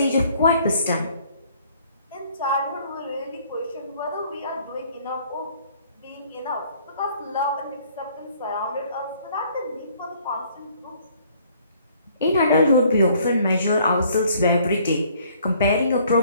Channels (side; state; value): both; inverted; correlation -0.61